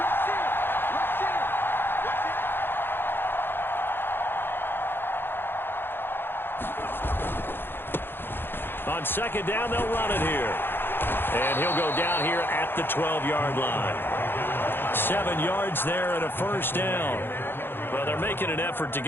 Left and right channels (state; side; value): late; right; 0.10 ms